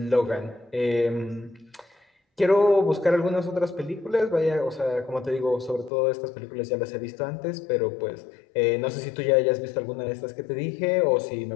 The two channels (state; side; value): drops out; right; at 5.9 s